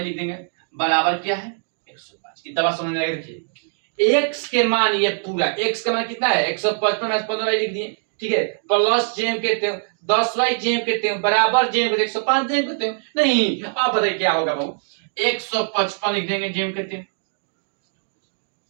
लिख देंगे बराबर क्या है 105। कितना बात समझ में आएगा। देखिए x के मान, ये पूरा x का मान कितना है 155 माइनस 15y लिख दिए। ठीक है, प्लस जेम कहते हो 10y जेम कहते हो बराबर जेम कहते 105 जेम कहते हो। नहीं, अब बताइए क्या होगा बाबू 155 लिख देंगे जेम कहते हो।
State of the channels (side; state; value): left; silent; digital silence